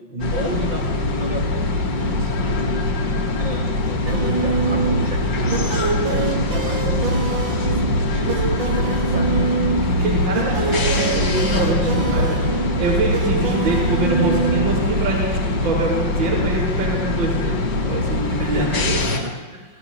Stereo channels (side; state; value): left; late; 5.6 ms